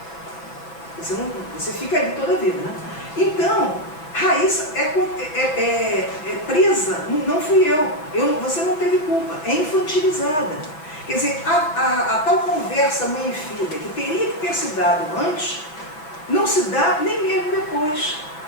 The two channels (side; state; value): right; late; 6.4 ms